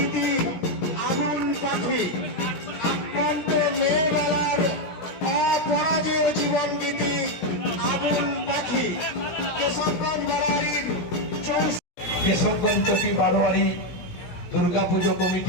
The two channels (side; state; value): right; late; 17 ms